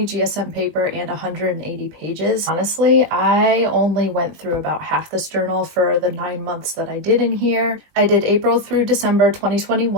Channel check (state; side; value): late; left; 20 ms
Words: GSM paper and 180 pages. Honestly, I only went through about half this journal for the 9 months that I did in here. I did April through December